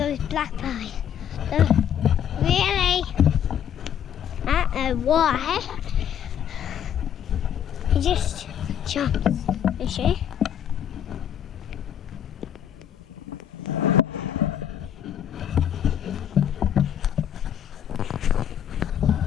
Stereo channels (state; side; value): quieter; right; 9.5 dB